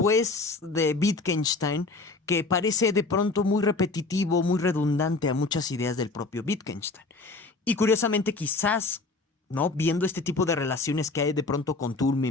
de Wittgenstein que parece de pronto muy repetitivo, muy redundante a muchas ideas del propio Wittgenstein. Y curiosamente quizás, ¿no? Viendo este tipo de relaciones que hay de pronto con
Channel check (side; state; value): right; quieter; 3.6 dB